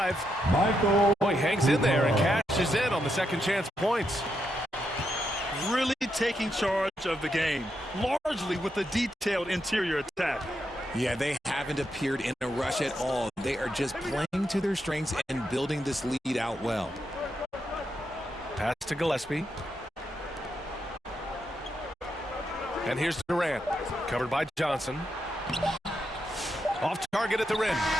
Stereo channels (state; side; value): normal; both; correlation 0.82